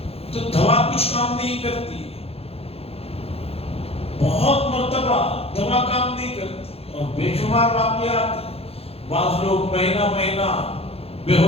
تو دوا کچھ کام نہیں کرتی ہے۔ بہت مرتبہ دوا کام نہیں کرتی اور بے شمار واقعات ہیں۔ بعض لوگ مہینہ بے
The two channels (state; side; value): late; right; 0.29 ms